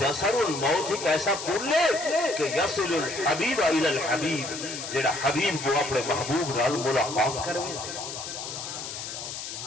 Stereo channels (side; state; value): left; noise; hiss, 8 dB below the sound